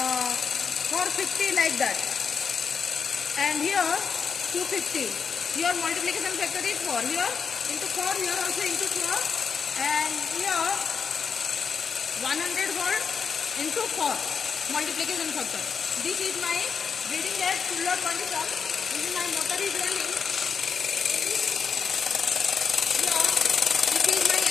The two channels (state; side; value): quieter; right; 6.2 dB